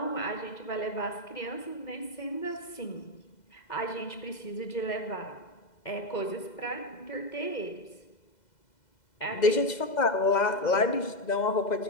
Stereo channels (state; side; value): late; right; 2.0 ms